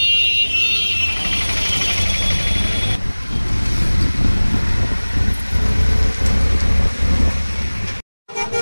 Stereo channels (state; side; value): inverted; both; correlation -1.00